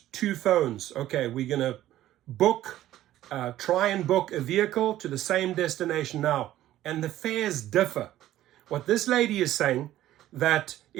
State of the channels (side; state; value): left; quieter; 13.8 dB